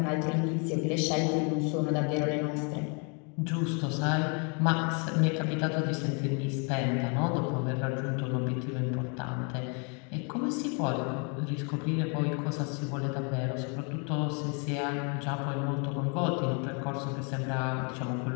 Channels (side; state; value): right; quieter; 36.6 dB